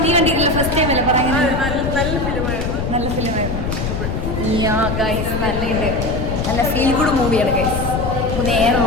കണ്ടിട്ടില്ല, ഫസ്റ്റ് ടൈം അല്ലേ പറയുന്നത്. നല്ല ഫിലിമായിരുന്നു. നല്ലുണ്ട്. നല്ല ഫീൽ ഗുഡ് മൂവിയാണ് ഗൈസ്. നേരെ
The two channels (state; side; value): noise; left; rumble, 3 dB below the sound